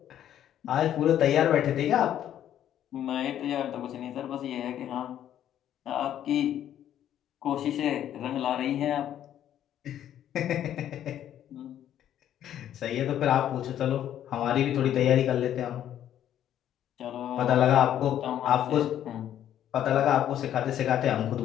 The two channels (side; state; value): right; quieter; 10.9 dB